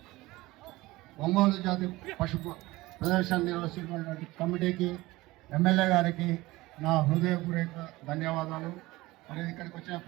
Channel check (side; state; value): left; quieter; 19.7 dB